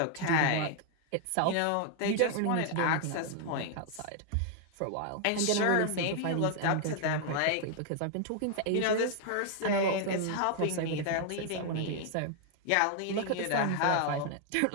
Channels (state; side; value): different; both; correlation 0.00